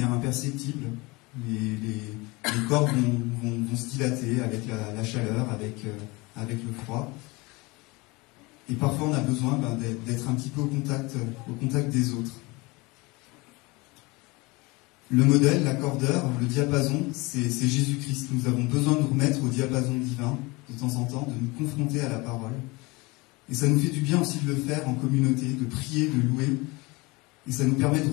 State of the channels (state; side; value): quieter; right; 24.5 dB